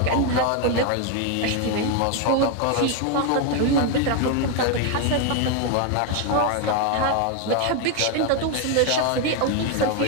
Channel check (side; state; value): both; different; correlation 0.01